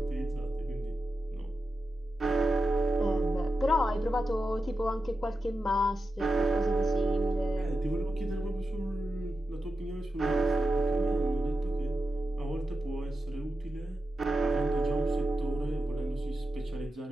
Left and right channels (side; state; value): both; normal; correlation 0.90